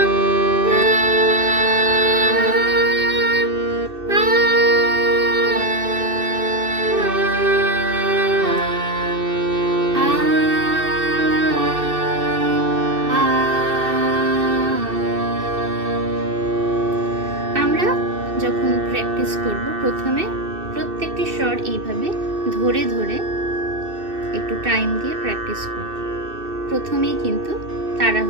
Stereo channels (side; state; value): left; late; 2.6 ms